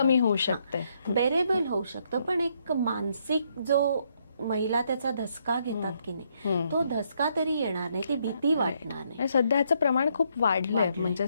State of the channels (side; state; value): both; inverted; correlation -0.73